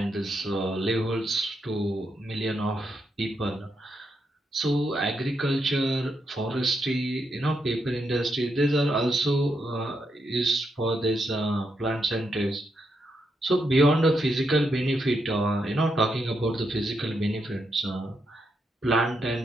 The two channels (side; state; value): both; normal; correlation 0.81